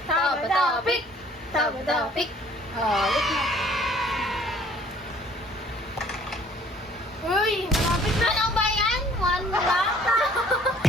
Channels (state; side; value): normal; both; correlation 0.56